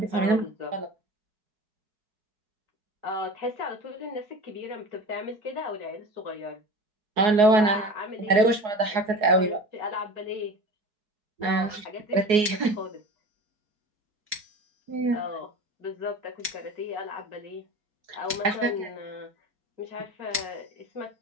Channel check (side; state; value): left; late; 4.7 ms